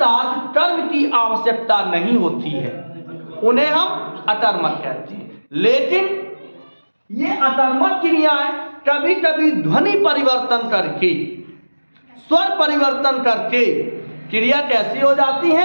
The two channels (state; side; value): inverted; both; correlation -1.00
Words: कर्म की आवश्यकता नहीं होती है उन्हें हम अकर्मक कहते हैं। लेकिन ये अकर्मक क्रियाएं कभी कभी ध्वनि परिवर्तन करके, स्वर परिवर्तन करके क्रिया कैसी हो जाती